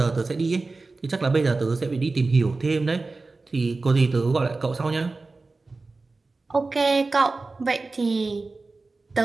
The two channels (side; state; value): left; quieter; 3.6 dB